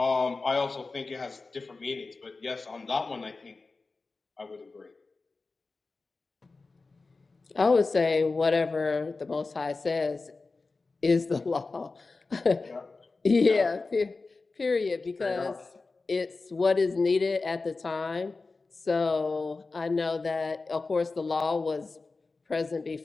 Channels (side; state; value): right; quieter; 3.8 dB